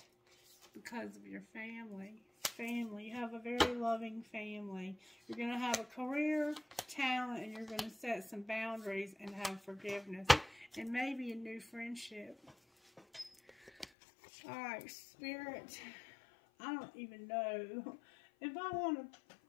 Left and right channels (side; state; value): right; drops out; at 13.9 s